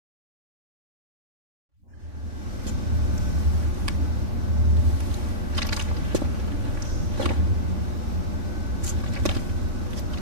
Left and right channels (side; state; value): left; late; 3.5 ms